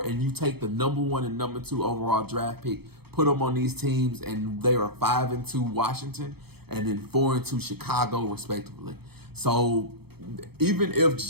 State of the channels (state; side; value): late; left; 0.97 ms